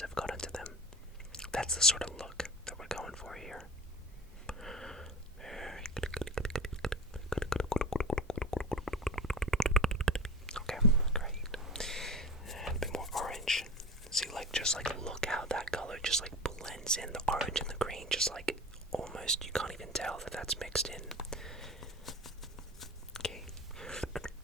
have got into them. That's the sort of look that we're going for here. Okay, great. And a bit more orange. See, just look how that color just blends in, the orange and the green, just almost, you can't even tell that that's mixed in. Okay.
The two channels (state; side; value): normal; both; correlation 0.32